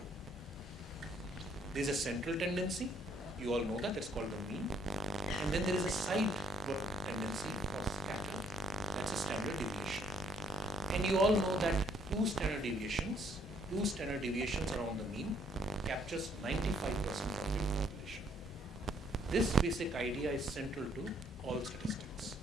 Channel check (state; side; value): normal; both; correlation 0.68